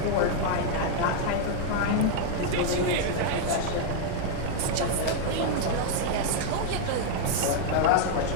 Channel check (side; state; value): both; different; correlation 0.00